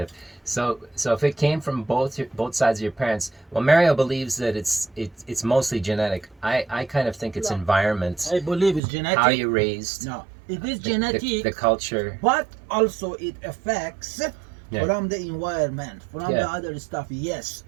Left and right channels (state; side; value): drops out; left; at 8.8 s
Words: So if it came from both sides of your parents, well, Mario believes that it's mostly genetic. I kind of think it's No. environment, I believe it's genetic. how you're raised, No, it is the- genetic, the culture. but also it affects Yeah. from the environment, from Yeah. the other stuff. Yes,